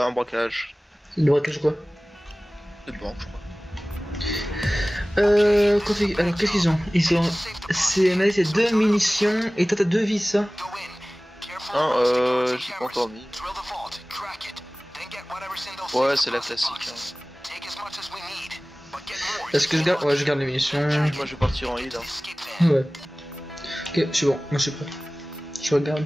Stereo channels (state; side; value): normal; both; correlation 0.98